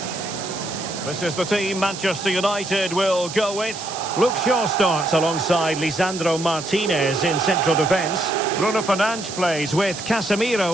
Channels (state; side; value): noise; right; hiss, 10 dB below the sound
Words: This is the team Manchester United will go with. Luke Shaw starts alongside Lisandro Martinez in central defence. Bruno Fernandes plays with